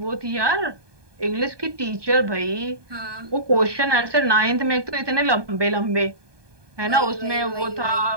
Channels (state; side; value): late; left; 1.2 ms